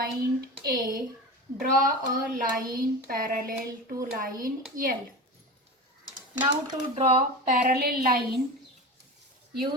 A, draw a line parallel to line L. Now to draw parallel line,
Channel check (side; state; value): both; normal; correlation 0.28